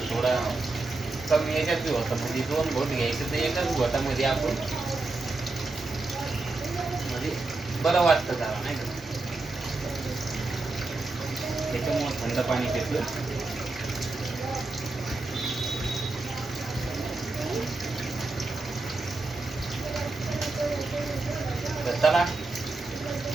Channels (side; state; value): left; quieter; 3.3 dB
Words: थोडं कमी याच्यात बी होतं. म्हणजे 2 घोट घ्यायचं तर एकाच घोटामध्ये आपण म्हणजे बरं वाटतं जरा, नाही का. त्याच्यामुळं थंड पाणी पितो. तर चला,